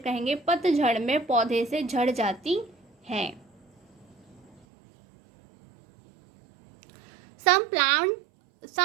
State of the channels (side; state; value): left; drops out; at 4.6 s